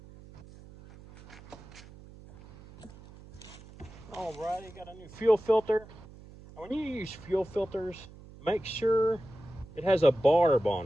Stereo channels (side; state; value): right; noise; hum, 19 dB below the sound